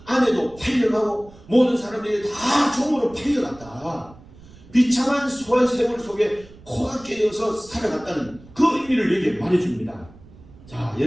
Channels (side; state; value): right; noise; rumble, 22 dB below the sound